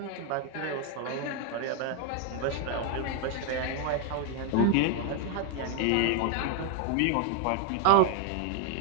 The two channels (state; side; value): different; both; correlation 0.01